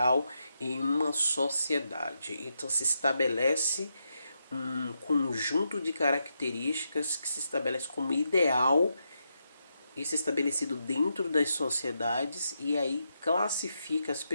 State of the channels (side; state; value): both; inverted; correlation -0.84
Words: em uma sociedade. Então, se estabelece um conjunto de características que se estabelece como ideal. Isso é estabelecido dentro das sociedades e aí classifica as